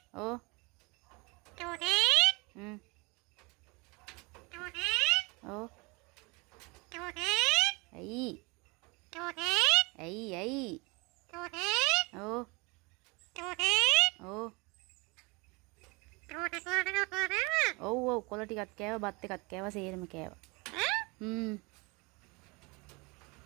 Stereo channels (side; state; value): left; quieter; 27.5 dB